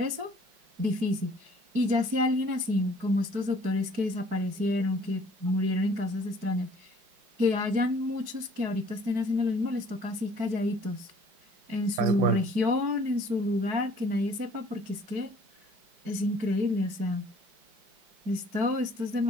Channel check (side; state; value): left; late; 4.6 ms